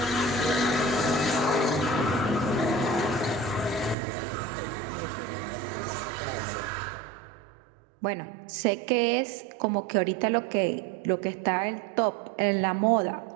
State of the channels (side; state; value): left; drops out; at 4.0 s